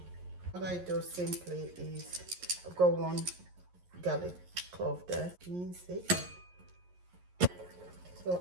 What I do simply is, I've got one garlic clove there, mince it.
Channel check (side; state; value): left; late; 11 ms